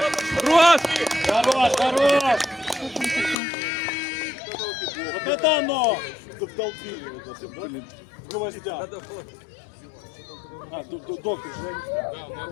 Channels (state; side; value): drops out; right; at 3.4 s